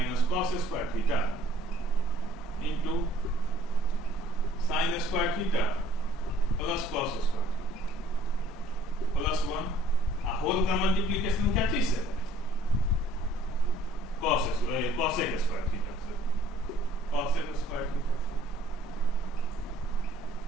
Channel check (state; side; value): normal; both; correlation 0.56